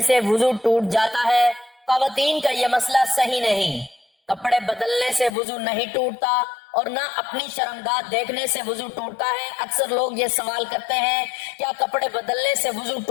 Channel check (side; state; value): right; drops out; at 5.3 s